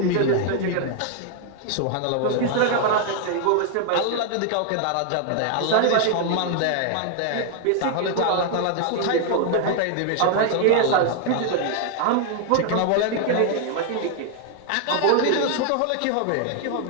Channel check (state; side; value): different; both; correlation 0.00